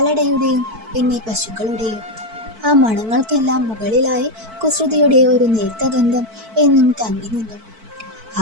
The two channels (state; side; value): late; left; 4.5 ms